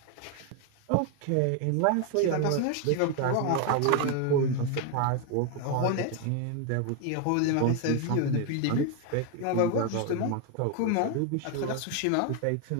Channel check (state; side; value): different; both; correlation 0.01